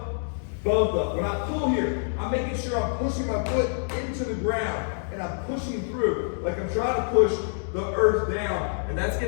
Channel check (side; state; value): right; silent; digital silence